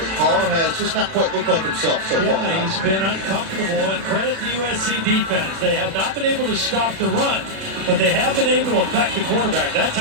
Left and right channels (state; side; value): late; left; 36 ms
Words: Carr has just not quite looked like himself so far. Yeah, he's been uncomfortable, and credit the USC defense. They have not been able to stop the run, but they have been able to affect the quarterback. That